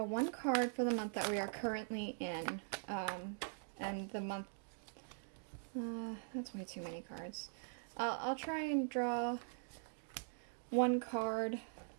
one card for the month that we are currently in. And the month... that's way too many cards. I'll try and draw one card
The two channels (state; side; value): silent; left; digital silence